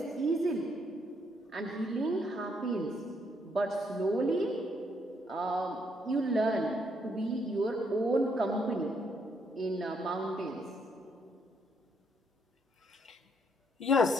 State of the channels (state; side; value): normal; both; correlation 0.73